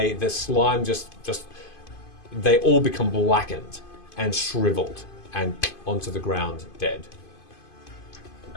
slime they all become blackened and shriveled and onto the ground dead.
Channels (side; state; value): right; late; 2.5 ms